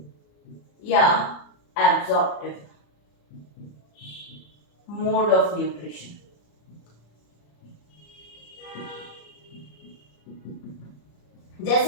या एब्जॉर्प्टिव मोड ऑफ न्यूट्रिशन।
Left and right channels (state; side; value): late; right; 34 ms